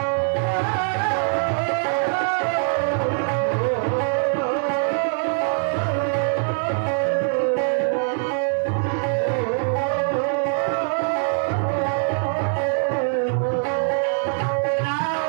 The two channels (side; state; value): left; silent; 64 dB below the other